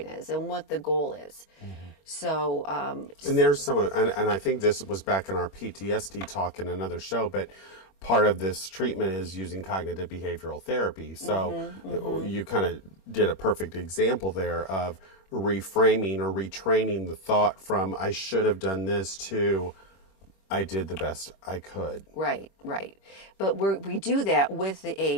is, and what the goal is. So, and there's and I think this was back in our PTSD talk in another show, but part of this treatment is using cognitive behavioral therapy. So you kind of did a perfect example there of reframing or retraining the thought from I should have done this to I did the best I could. Right, right. But we do that with the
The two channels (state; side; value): late; right; 25 ms